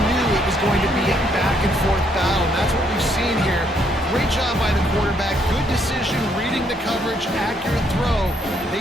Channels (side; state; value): both; normal; correlation 0.71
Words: it was going to be a back-and-forth battle. And that's what we've seen here. Great job by the quarterback. Good decision, reading the coverage, accurate throw.